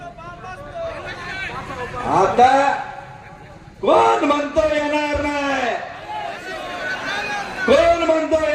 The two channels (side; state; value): both; identical; correlation 1.00